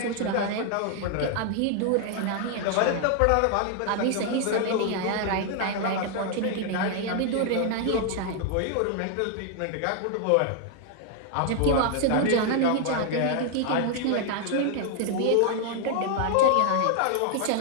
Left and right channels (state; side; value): different; both; correlation 0.00